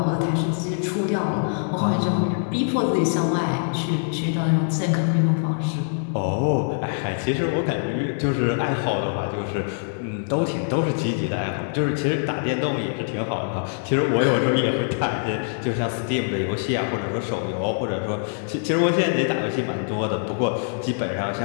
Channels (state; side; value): silent; right; digital silence